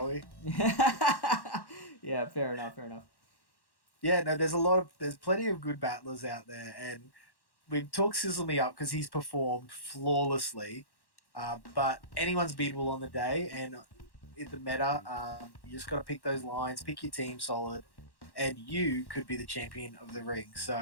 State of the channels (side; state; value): right; late; 1.1 ms